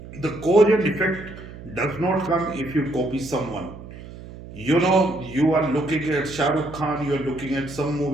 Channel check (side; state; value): right; noise; hum, 15 dB below the sound